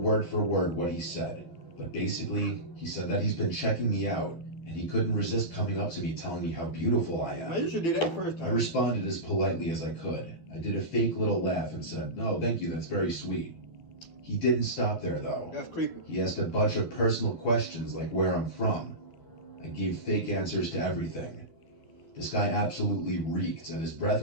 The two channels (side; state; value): right; late; 12 ms